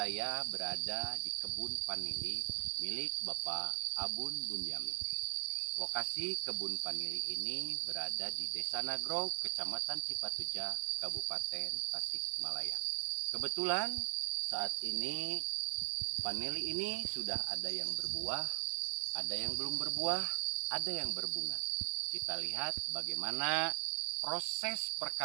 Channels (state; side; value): silent; left; digital silence